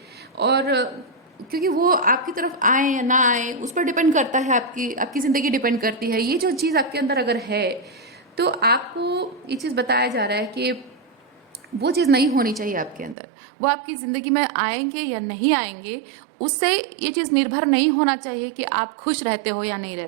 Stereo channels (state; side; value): drops out; left; at 13.2 s